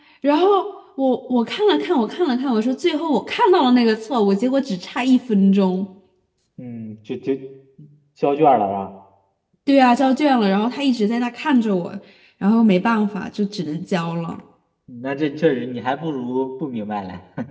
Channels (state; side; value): identical; both; correlation 1.00